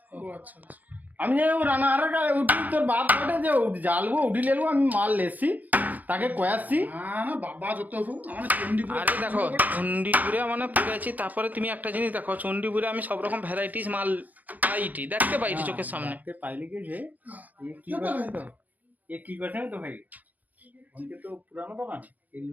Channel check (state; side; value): late; left; 0.081 ms